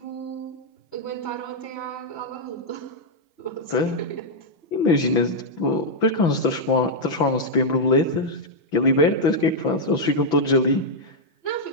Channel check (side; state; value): right; late; 6.0 ms